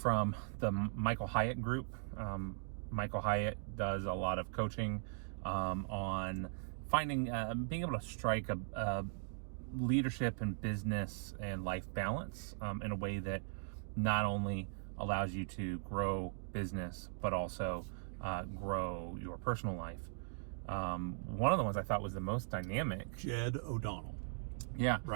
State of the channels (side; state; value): left; silent; digital silence